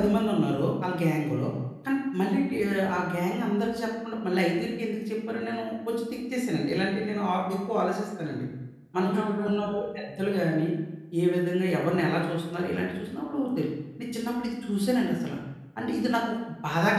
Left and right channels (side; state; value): both; identical; correlation 1.00